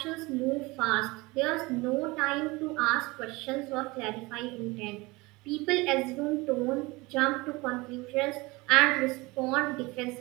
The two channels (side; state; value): left; quieter; 23.3 dB